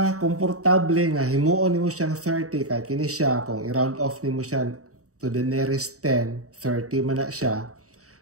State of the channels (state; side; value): late; left; 0.65 ms